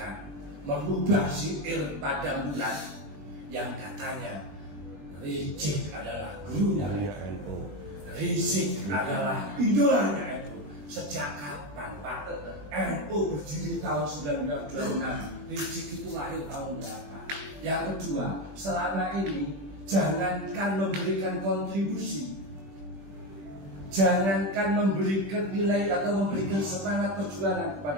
merubah syair pada bulan yang katanya Rizik adalah gurunya NU, Rizik adalah idolanya NU. Sejak kapan Pak? NU berdiri tahun 1926, Rizik itu lahir tahun berapa? Yang kedua, selama ini jangankan memberikan kontribusi, jangankan memberikan nilai atau memberikan semangat perjuangan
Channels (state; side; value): late; left; 21 ms